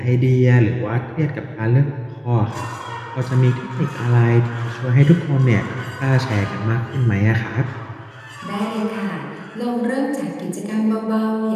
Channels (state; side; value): identical; both; correlation 1.00